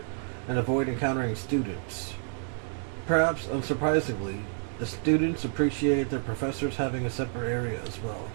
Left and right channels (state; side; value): silent; left; 58 dB below the other